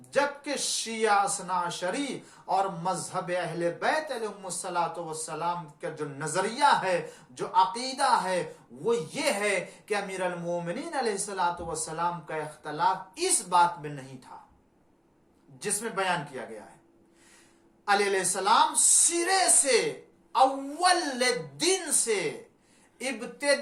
جبکہ شیعہ اثنا عشری اور مذہب اہل بیت علیہم الصلوۃ والسلام کا جو نظریہ ہے، جو عقیدہ ہے، وہ یہ ہے کہ امیر المومنین علیہ الصلوۃ والسلام کا اختلاف اس بات میں نہیں تھا جس میں بیان کیا گیا ہے۔ علی علیہ السلام سرے سے، اول دن سے،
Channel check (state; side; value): identical; both; correlation 1.00